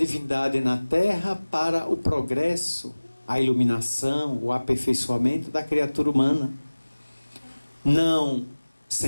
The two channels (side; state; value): both; inverted; correlation -1.00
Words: na Terra para o progresso, a iluminação, o aperfeiçoamento da criatura humana. Não,